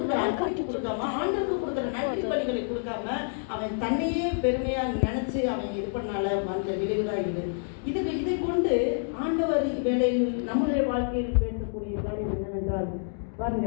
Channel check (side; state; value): right; silent; digital silence